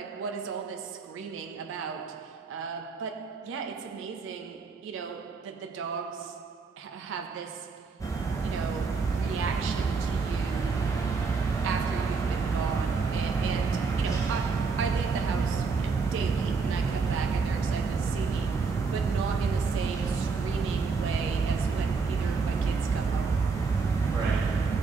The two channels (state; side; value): quieter; left; 4.8 dB